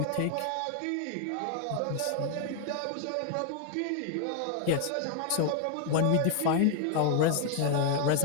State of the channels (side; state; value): both; different; correlation 0.00